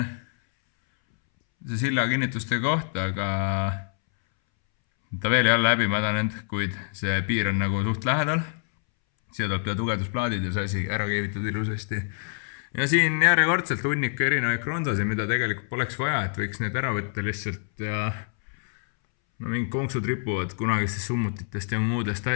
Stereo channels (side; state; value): right; silent; 61 dB below the other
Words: see silla kinnituste koht, aga ta veel ei ole läbi mädanenud, kuid see piir on nagu suht lähedal. Siia tuleb tugevdusplaadid ja see asi ära keevitud ilusasti. Ja siin järjekordselt hunnik erinevaid kronsasid, mida tegelikult poleks vaja, et võiks need ära võtta lihtsalt ja mingid konksud ripuvad kunagistest summutitest ja muudest